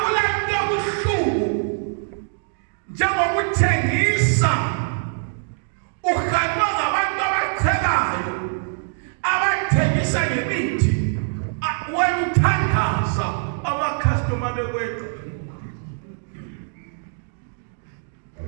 buhlungu njengokuthengisa uhanjwa ngabantu abachelayo abathengisa ngemithi wena uthandaza amakhastoma bekweqa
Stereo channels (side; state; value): left; silent; 61 dB below the other